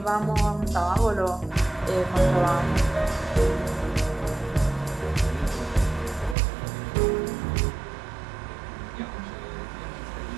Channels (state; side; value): drops out; left; at 6.4 s